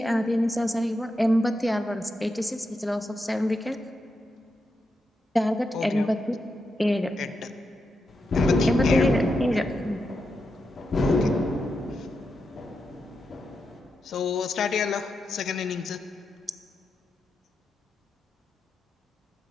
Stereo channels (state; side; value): normal; both; correlation 0.86